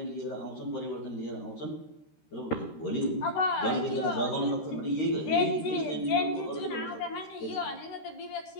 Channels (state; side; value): late; right; 13 ms